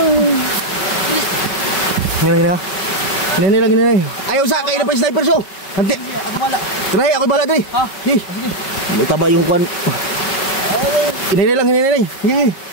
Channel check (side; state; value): right; late; 5.3 ms